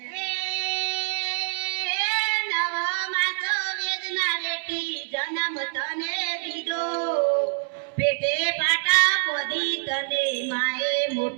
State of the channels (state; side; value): silent; left; 61 dB below the other